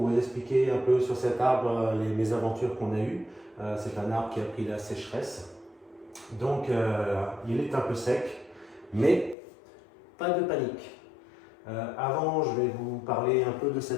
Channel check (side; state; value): right; drops out; at 9.3 s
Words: vous expliquer un peu sur cet arbre les mésaventures qu'on a eues. C'est un arbre qui a pris la sécheresse, donc il est un peu sec, mais pas de panique. Avant, je vais vous parler un peu de